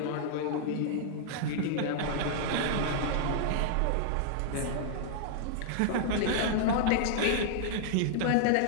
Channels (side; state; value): both; different; correlation -0.01